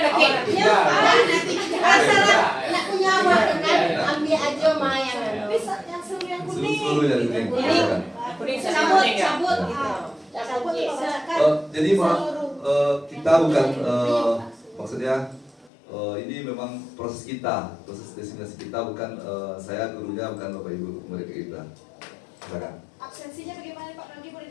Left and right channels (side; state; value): right; drops out; at 15.7 s